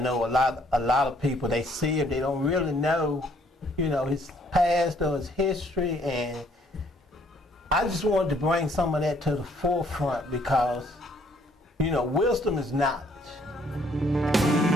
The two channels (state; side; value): normal; both; correlation 0.64